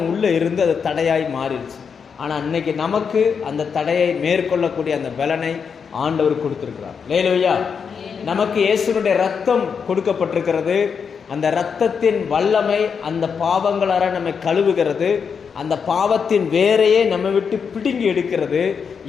உள்ளே இருந்து அது தடையாய் மாறிடுச்சு. ஆனால் இன்னைக்கு நமக்கு அந்த தடையை மேற்கொள்ளக்கூடிய அந்த பலனை ஆண்டவர் கொடுத்துருக்கிறார். லேலூயா. நமக்கு இயேசுனுடைய ரத்தம் கொடுக்கப்பட்டிருக்கிறது. அந்த இரத்தத்தின் வல்லமை அந்த பாவங்களார நம்மை கழுவுகிறது. அந்த பாவத்தின் வேரையே நம்ம விட்டு பிடுங்கி எடுக்கிறது.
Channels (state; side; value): quieter; right; 6.3 dB